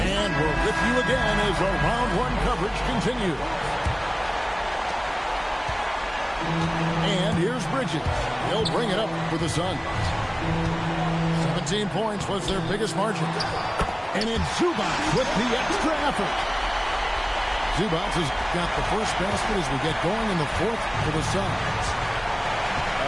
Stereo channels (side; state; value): both; identical; correlation 1.00